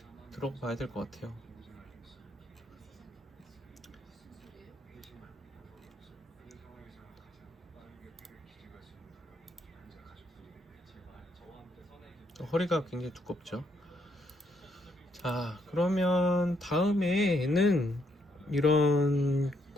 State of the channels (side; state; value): both; normal; correlation 0.74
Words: 들어가 봐야 될 것 같아요. 허리가 굉장히 두껍죠. 자, 그러면 다음에는 이런